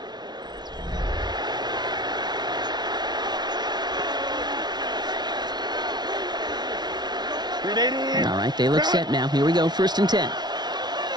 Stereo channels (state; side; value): late; left; 0.20 ms